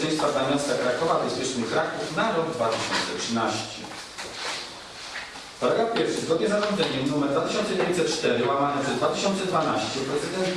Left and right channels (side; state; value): both; identical; correlation 1.00